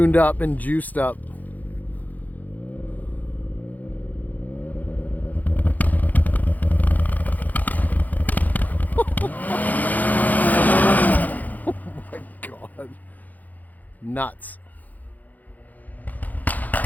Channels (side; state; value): right; late; 0.081 ms